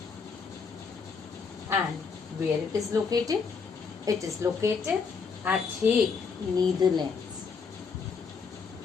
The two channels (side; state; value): right; quieter; 5.4 dB